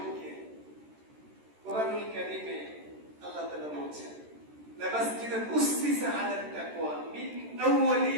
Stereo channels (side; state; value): left; late; 13 ms